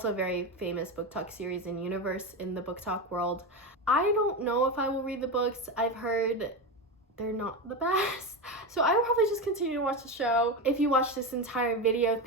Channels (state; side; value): normal; both; correlation 0.17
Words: a very famous book talk series in universe in the book talk world. I don't know if I will read the books. I've heard they're not the best, so I will probably just continue to watch the show. If you watched this entire video,